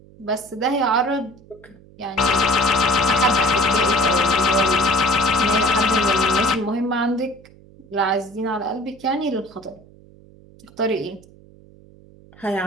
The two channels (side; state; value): right; noise; hum, 24 dB below the sound